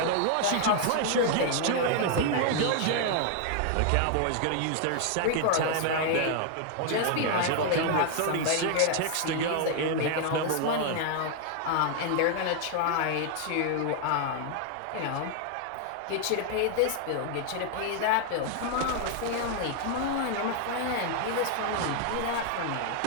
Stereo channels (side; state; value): both; different; correlation 0.00